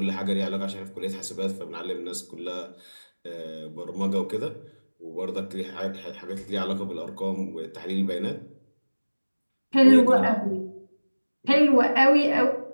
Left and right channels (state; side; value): inverted; both; correlation -1.00